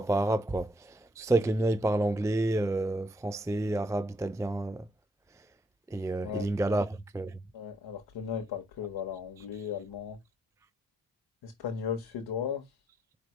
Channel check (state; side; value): normal; both; correlation 0.75